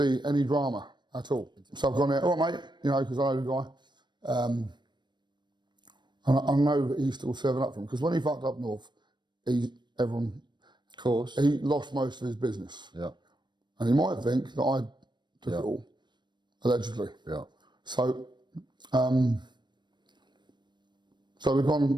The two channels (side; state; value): left; late; 0.22 ms